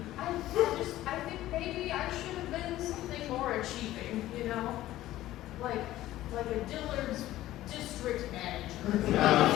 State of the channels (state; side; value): quieter; right; 14.9 dB